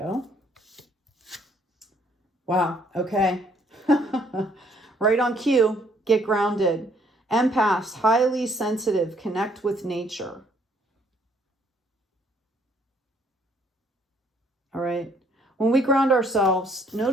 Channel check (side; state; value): both; normal; correlation 0.65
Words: Wow. Okay. Right on cue. Get grounded. Empaths, highly sensitive, connect with nature. All right. When we ground ourselves,